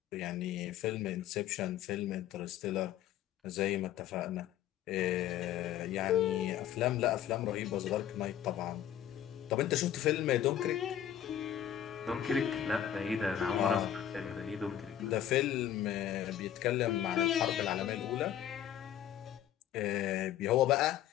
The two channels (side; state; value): right; quieter; 10.8 dB